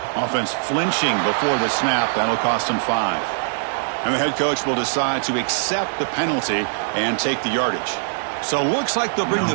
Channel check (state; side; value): silent; left; digital silence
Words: Offense flinching before the snap. That'll cost them 5. And the head coach will decide to accept the penalty and take the yardage. So looks like they'll bring